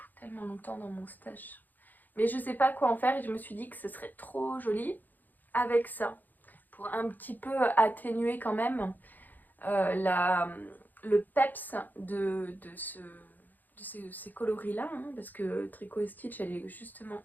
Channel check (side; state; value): right; late; 0.086 ms